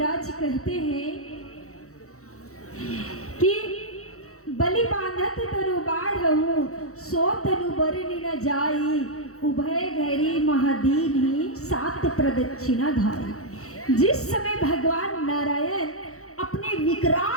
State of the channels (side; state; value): right; late; 0.64 ms